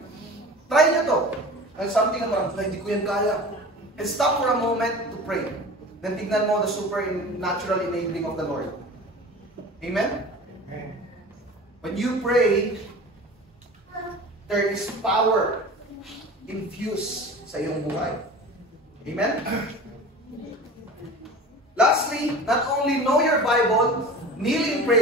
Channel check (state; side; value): normal; both; correlation 0.37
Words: Try nyo to. There's something na parang, hindi ko yan kaya. And stop for a moment to pray. Then tignan mo the supernatural enabling of the Lord. Amen? When you pray, there is power infused sa iyong buhay. Amen? Lastly, not only know your Bible, kneel in